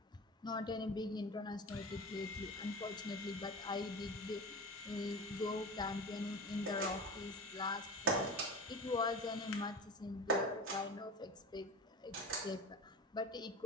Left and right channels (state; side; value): normal; both; correlation 0.30